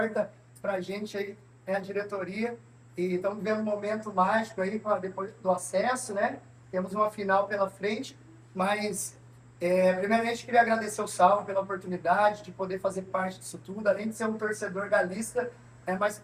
pra gente aí, né, a diretoria. E estamos vivendo um momento mágico aí, depois do acesso, né? Temos uma final pela frente, mas primeiramente queria agradecer o Saulo pela oportunidade de poder fazer parte disso tudo, além de ser um torcedor galista, mas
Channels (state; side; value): identical; both; correlation 1.00